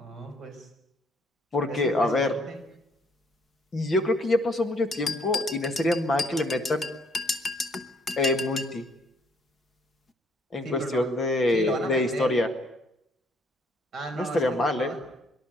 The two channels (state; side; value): normal; both; correlation 0.65